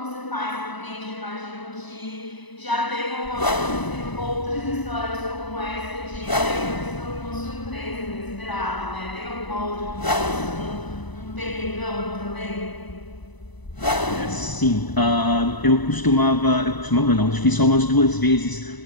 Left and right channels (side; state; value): right; late; 1.0 ms